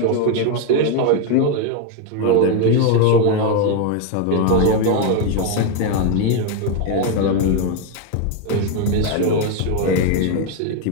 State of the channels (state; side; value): different; both; correlation 0.01